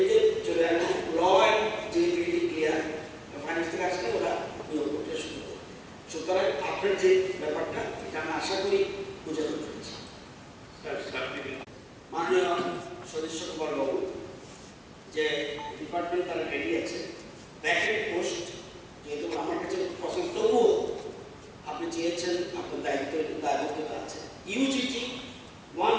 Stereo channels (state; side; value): identical; both; correlation 1.00